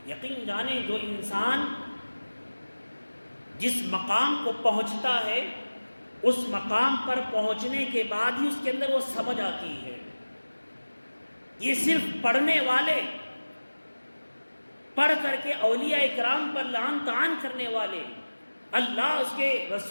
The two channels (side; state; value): both; inverted; correlation -1.00